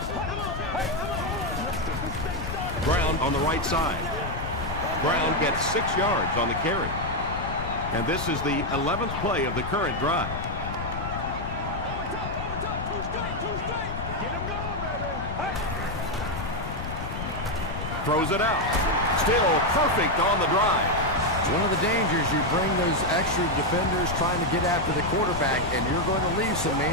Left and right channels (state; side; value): noise; left; rumble, 6 dB below the sound